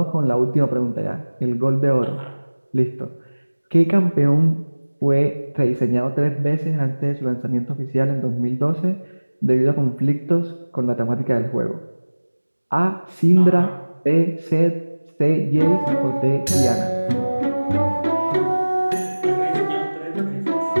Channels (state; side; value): inverted; both; correlation -1.00